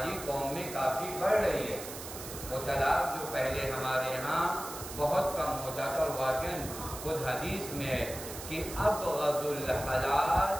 قوم میں کافی بڑھ رہی ہے. وہ طلاق جو پہلے ہمارے یہاں بہت کم ہوتا تھا، اور واقعاً خود حدیث میں ہے کہ ابغض الحلال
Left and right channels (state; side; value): noise; right; hiss, 10 dB below the sound